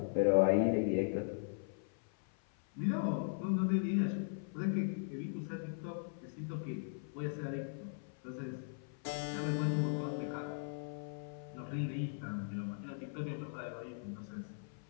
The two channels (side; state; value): right; silent; 52 dB below the other